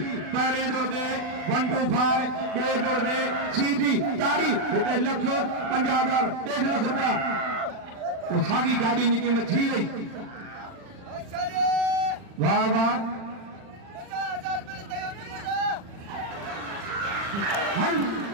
पहले दौर दे 125 बे दौर दे सीधी तारी इतने लख 50,000 1.5 लाख रुपया वो सागी गाड़ी की कीमत थी गई। वाह वाह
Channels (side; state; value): left; late; 40 ms